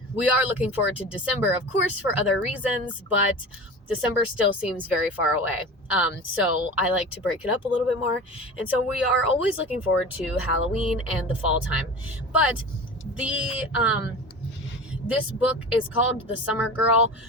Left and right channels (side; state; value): both; normal; correlation 0.33